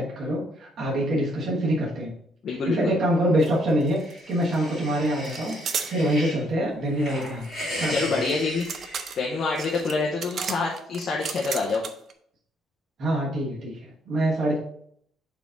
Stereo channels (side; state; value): both; normal; correlation 0.69